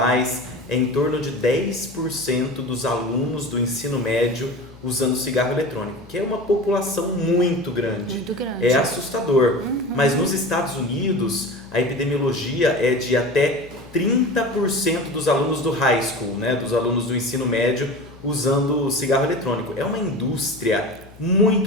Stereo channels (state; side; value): noise; left; hum, 23 dB below the sound